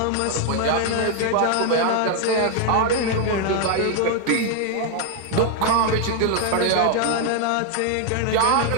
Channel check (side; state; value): both; different; correlation 0.00